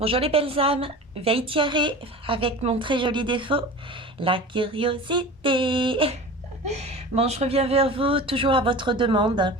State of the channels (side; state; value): both; normal; correlation 0.35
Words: les belles âmes, veille tiaré avec mon très joli défaut, la curiosité. Bon, je reviens vers vous, toujours à votre demande,